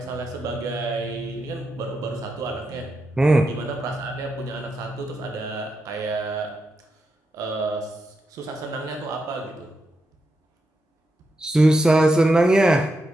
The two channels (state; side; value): normal; both; correlation 0.86